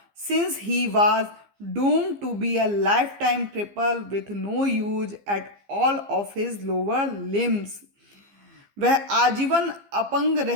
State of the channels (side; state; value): left; late; 15 ms